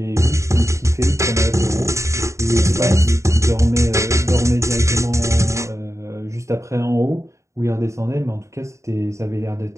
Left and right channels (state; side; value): late; left; 0.14 ms